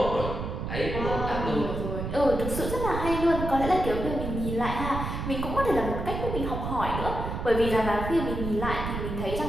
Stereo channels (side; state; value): right; noise; rumble, 4 dB below the sound